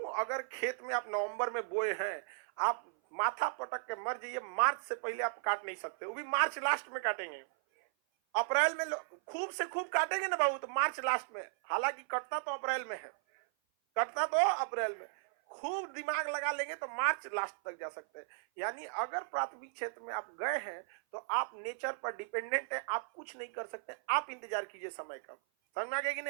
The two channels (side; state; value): left; silent; 54 dB below the other